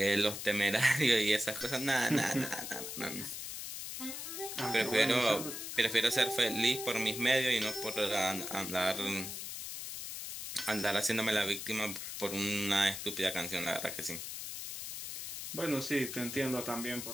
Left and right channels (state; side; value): noise; left; hiss, 7 dB below the sound